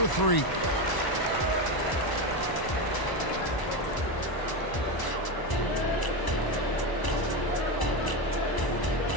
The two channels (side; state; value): right; late; 1.0 ms